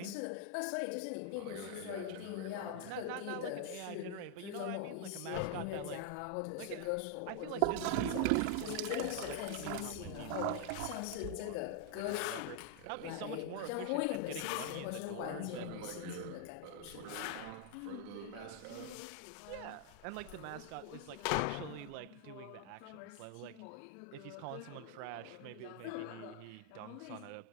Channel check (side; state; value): both; different; correlation 0.00